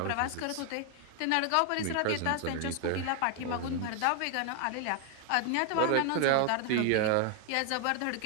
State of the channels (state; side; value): different; both; correlation 0.00